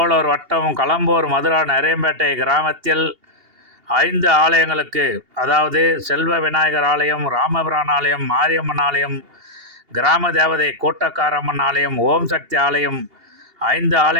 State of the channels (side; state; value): left; late; 2.8 ms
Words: வட்டம் களம்பூர் மதுரா நரேம்பேட்டை கிராமத்தில் 5 ஆலயங்களுக்கு, அதாவது செல்வ விநாயகர் ஆலயம், ராமபிரான் ஆலயம், மாரியம்மன் ஆலயம், கிராம தேவதை கூட்டக்காரம்மன் ஆலயம், ஓம் சக்தி ஆலயம் 5